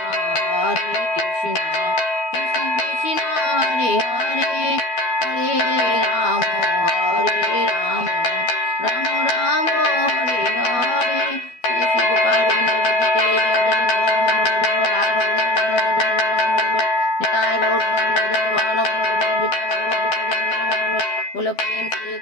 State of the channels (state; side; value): late; right; 12 ms